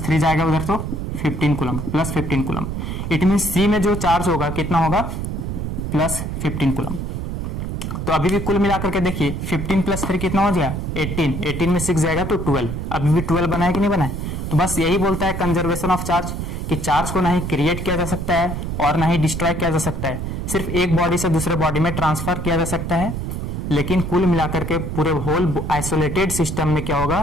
3 जाएगा उधर तो 15 coulomb, +15 coulomb. It mean C में जो चार्ज होगा कितना होगा, +15 कूलम। तो अभी भी कुल मिलाकर के देखिए 15 + 3 कितना हो गया, 18, 18 में 6 जाएगा तो 12, अभी भी 12 बना है कि नहीं बना है। तो बस यही बोलता है कंजर्वेशन ऑफ चार्ज कि चार्ज को ना ही क्रिएट किया जा सकता है और ना ही डिस्ट्रॉय किया जा सकता है, सिर्फ एक बॉडी से दूसरे बॉडी में ट्रांसफर किया जा सकता है, लेकिन कुल मिलाकर के पूरे होल आइसोलेटेड सिस्टम में क्या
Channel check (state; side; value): noise; right; rumble, 4 dB below the sound